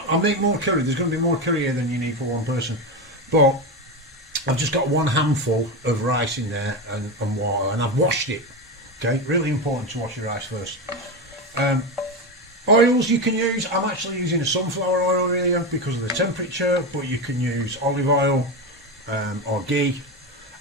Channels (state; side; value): normal; both; correlation 0.16